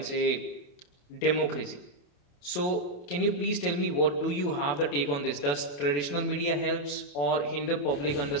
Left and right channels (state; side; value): late; right; 28 ms